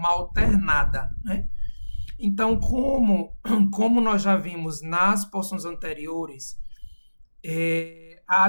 alternada, né? Então, como nós já vimos nas porções anteriores,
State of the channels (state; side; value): inverted; both; correlation -1.00